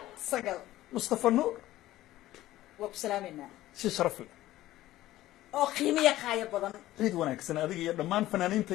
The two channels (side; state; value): right; quieter; 15.3 dB